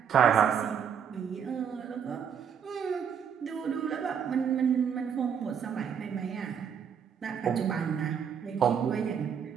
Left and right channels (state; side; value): quieter; left; 7.6 dB